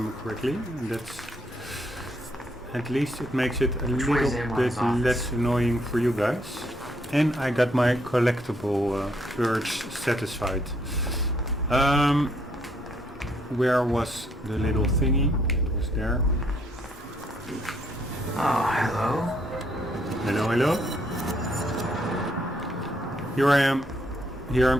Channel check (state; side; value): normal; both; correlation 0.71